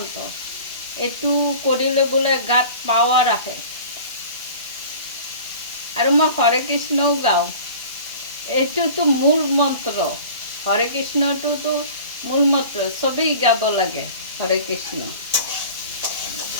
এইটো কৰিলে বোলে গাত পাৱাৰ আহে। আৰু মই হৰে কৃষ্ণও গাওঁ। এইটোতো মূল মন্ত্ৰ, হৰে কৃষ্ণটোতো মূল মন্ত্ৰ, চবেই গাব লাগে হৰে কৃষ্ণ।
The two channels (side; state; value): both; inverted; correlation -0.41